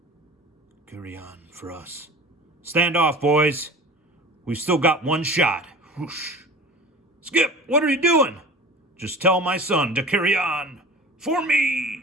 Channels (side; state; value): both; normal; correlation 0.38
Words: Carry on for us. Stand off, boys. We've still got one shot. Whoosh. Skip, what are you doing? Just tell my son to carry on. For